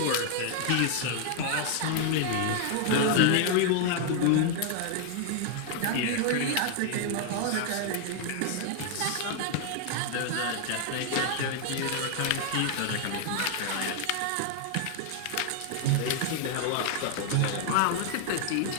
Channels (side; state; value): both; different; correlation 0.00